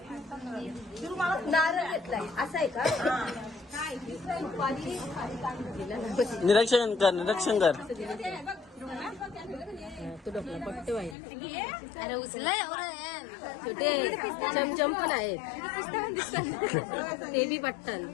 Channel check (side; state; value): right; drops out; at 11.2 s